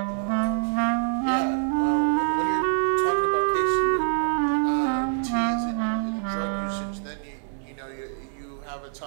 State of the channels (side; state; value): left; silent; digital silence